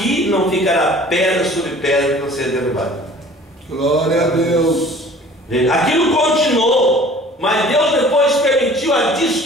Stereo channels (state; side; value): normal; both; correlation 0.48